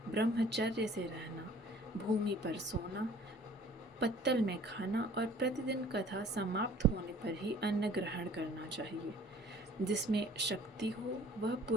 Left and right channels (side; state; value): both; normal; correlation 0.51